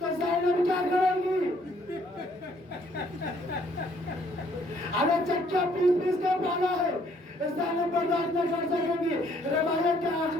زینب کیا کریں گی؟ ارے چچا پیس کے پالا ہے، زینب برداشت نہ کر سکیں گی۔ روایت کے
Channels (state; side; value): normal; both; correlation 0.65